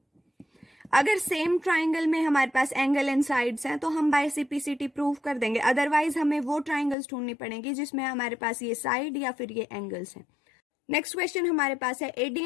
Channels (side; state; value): right; drops out; at 7.0 s